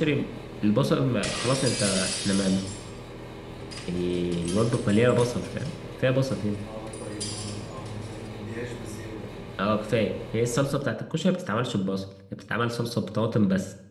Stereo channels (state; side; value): identical; both; correlation 1.00